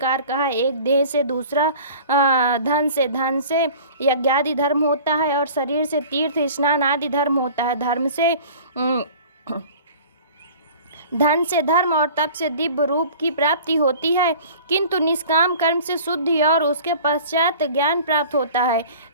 का है, एक देह से, दूसरा धन से यज्ञादि धर्म होता है और शरीर से तीर्थ स्नान आदि धर्म होता है। धन से धर्म और तप से दिव्य रूप की प्राप्ति होती है, किंतु निष्काम कर्म से शुद्धि और उसके पश्चात ज्ञान प्राप्त होता है।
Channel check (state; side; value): inverted; both; correlation -0.44